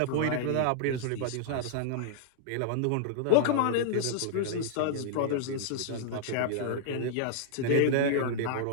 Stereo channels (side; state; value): both; different; correlation -0.01